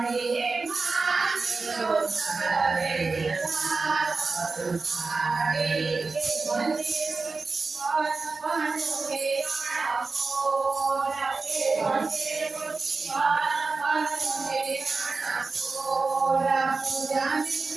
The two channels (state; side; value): quieter; left; 4.0 dB